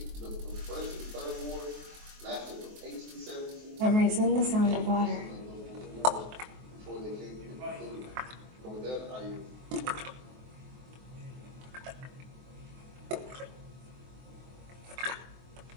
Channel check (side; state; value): left; late; 23 ms